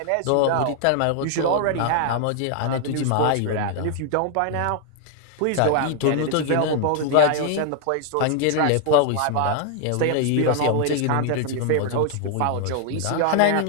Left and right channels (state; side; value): different; both; correlation 0.00